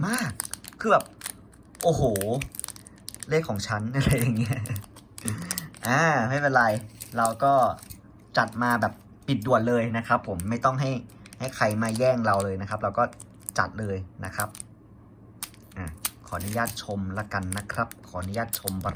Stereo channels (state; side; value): identical; both; correlation 1.00